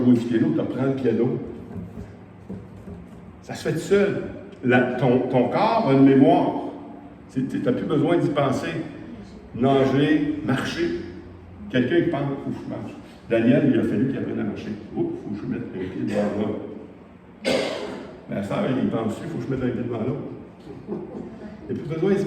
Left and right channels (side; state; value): both; identical; correlation 1.00